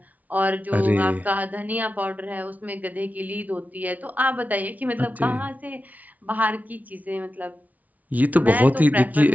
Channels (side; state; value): left; late; 0.074 ms